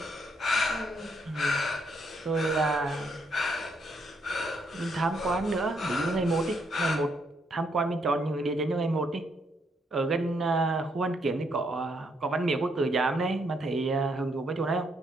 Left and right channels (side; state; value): both; normal; correlation 0.74